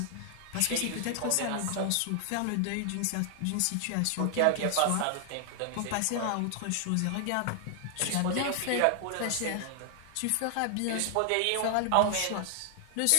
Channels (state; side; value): different; both; correlation 0.00